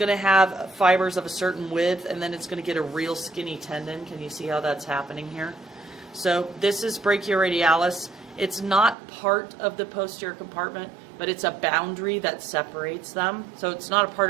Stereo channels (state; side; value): drops out; left; at 9.0 s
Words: to have fibers of a certain width, and then it's going to get a real skinny tendon. Can you see how that's happening here? So this is brachioradialis. It's not part of the posterior compartment, but it's a boundary that separates them. So it's not a part